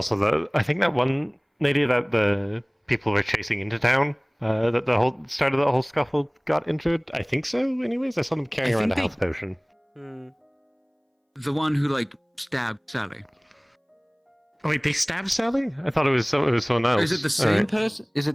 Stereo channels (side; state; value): both; identical; correlation 1.00